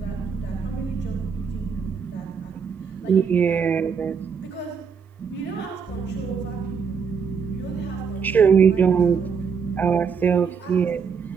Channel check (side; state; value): left; quieter; 6.2 dB